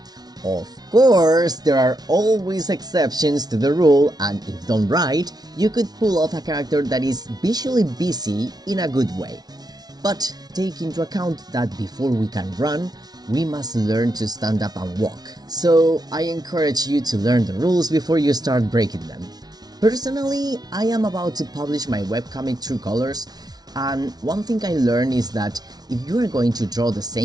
Of course, there are always exceptions to the rule, and if done right, you could pull off a character that is visually busy in a good way. But take into account that before we can run, we must learn to stand up and walk. So I encourage you to learn the rules before you start breaking them. Personally, I am about to publish my webcomic True Colors, and one thing I learned is that if you are going to draw the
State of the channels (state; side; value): late; left; 0.19 ms